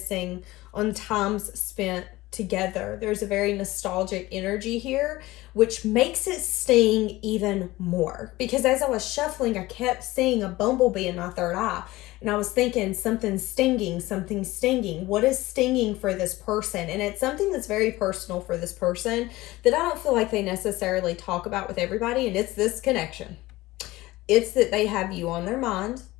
on times spent together. There's a very nostalgic energy here, which makes it sting even more. Because as I was shuffling, I kept seeing a bumblebee in my third eye. And I was thinking, something's stinging, something's stinging. What is stinging for this person? And it's something that's very personal for this person that I don't feel like they necessarily talk about with everybody. And it's this connection. It's that they have you on their mind,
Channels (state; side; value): quieter; right; 18.7 dB